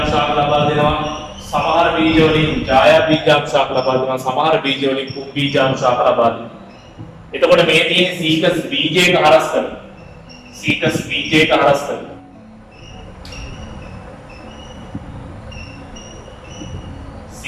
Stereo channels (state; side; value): identical; both; correlation 1.00